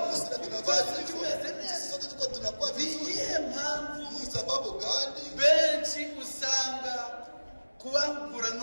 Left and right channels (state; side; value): inverted; both; correlation -1.00